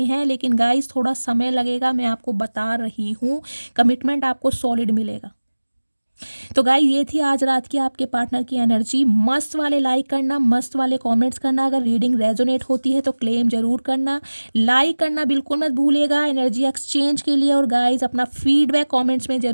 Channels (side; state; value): both; inverted; correlation -1.00